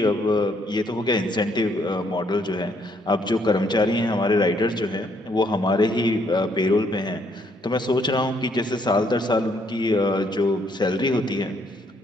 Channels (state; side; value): normal; both; correlation 0.69